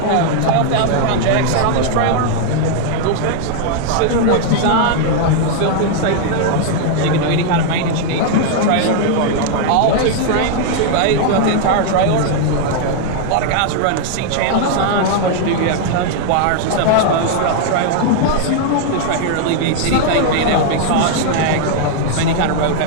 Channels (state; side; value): different; both; correlation 0.00